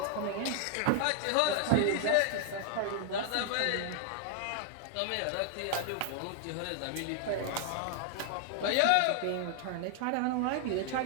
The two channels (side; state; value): both; different; correlation 0.00